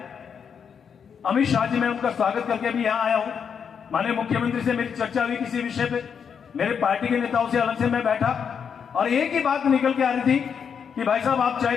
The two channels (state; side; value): quieter; right; 7.0 dB